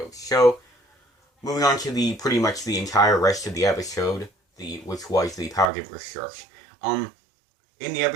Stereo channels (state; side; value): drops out; left; at 5.7 s